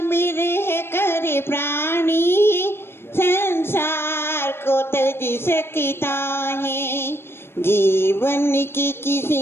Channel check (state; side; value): late; right; 0.11 ms